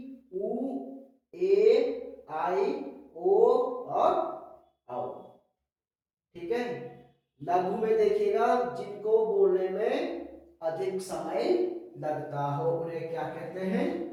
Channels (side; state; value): both; identical; correlation 1.00